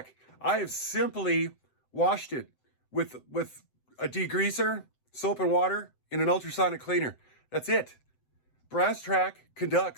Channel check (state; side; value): late; right; 7.8 ms